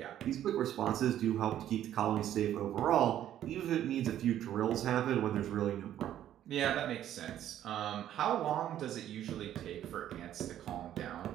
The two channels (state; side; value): quieter; left; 11.5 dB